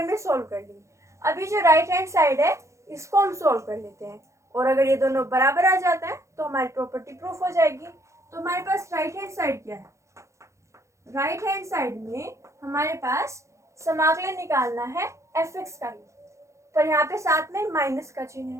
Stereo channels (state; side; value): late; left; 0.14 ms